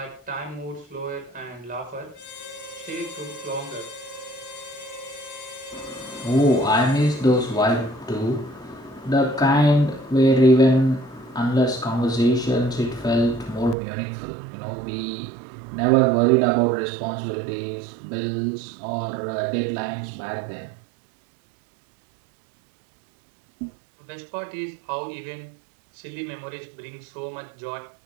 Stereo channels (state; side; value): drops out; left; at 13.8 s